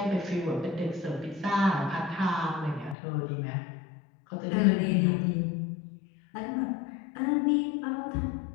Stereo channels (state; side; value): drops out; right; at 3.0 s